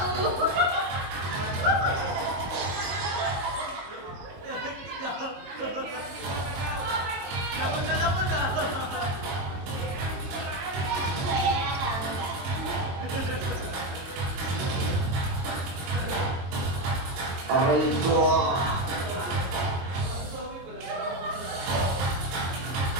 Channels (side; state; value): left; late; 22 ms